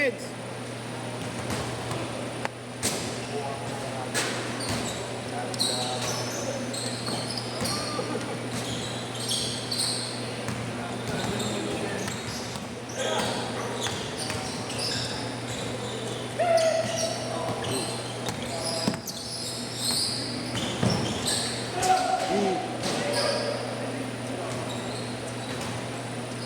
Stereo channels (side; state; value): both; identical; correlation 1.00